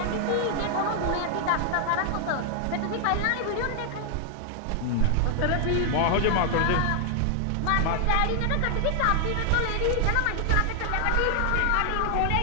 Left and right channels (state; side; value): different; both; correlation 0.00